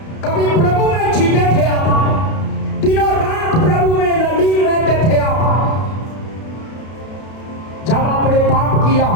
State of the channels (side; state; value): right; late; 32 ms